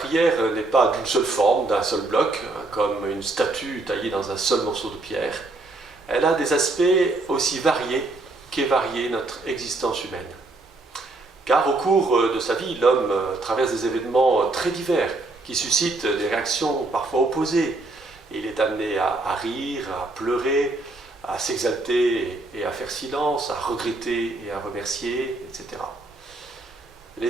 n'est pas d'une seule forme, d'un seul bloc, comme une statue taillée dans un seul morceau de pierre. Elle a des aspects aussi variés qu'est variée notre existence humaine. Car au cours de sa vie, l'homme traverse des événements très divers qui suscitent des réactions parfois opposées. Il est amené à rire, à pleurer, à s'exalter et à faire silence, à regretter et à remercier, etc.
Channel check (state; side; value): quieter; left; 3.0 dB